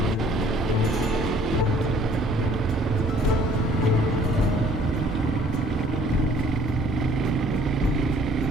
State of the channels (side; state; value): both; normal; correlation 0.57